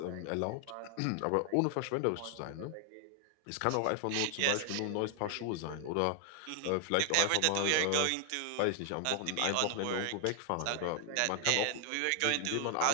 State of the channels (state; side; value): different; both; correlation 0.00